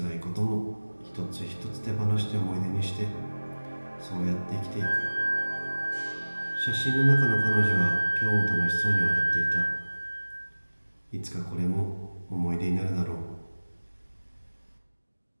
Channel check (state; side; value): inverted; both; correlation -1.00